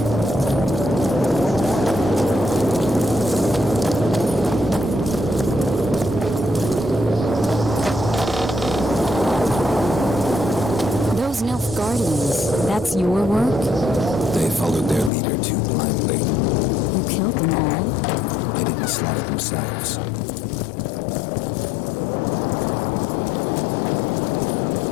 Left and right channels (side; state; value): right; drops out; at 15.1 s